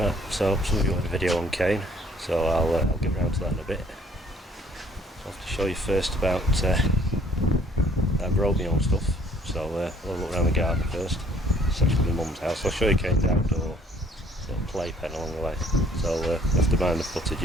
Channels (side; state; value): both; normal; correlation 0.60